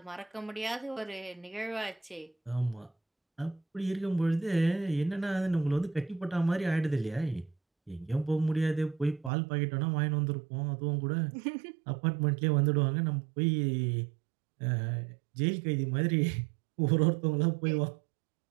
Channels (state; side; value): drops out; left; at 9.3 s